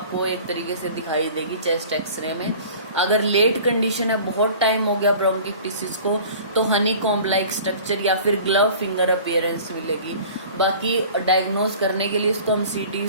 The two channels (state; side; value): inverted; both; correlation -0.44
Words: एक तरीके से दिखाई देगी चेस्ट एक्सरे में। अगर लेट कंडीशन है, बहुत टाइम हो गया ब्रोंकिक्टिसिस को, तो हनी कॉम्ब लाइक स्ट्रक्चर या फिर ग्लव फिंगर अपीयरेंस मिलेगी। बाकी डायग्नोज करने के लिए इसको हम सीटी